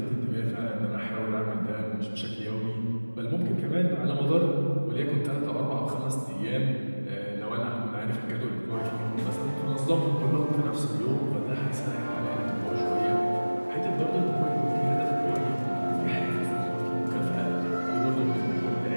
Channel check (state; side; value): inverted; both; correlation -1.00